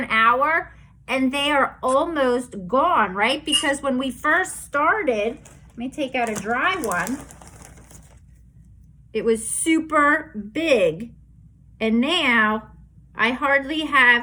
hour, and they are almost gone, right? Because when we first started, let me take out a dry one. It was super big, and now I hardly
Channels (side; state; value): both; identical; correlation 1.00